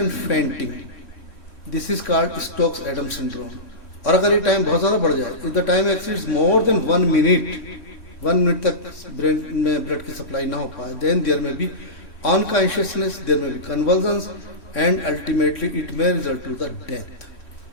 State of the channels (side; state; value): right; late; 3.1 ms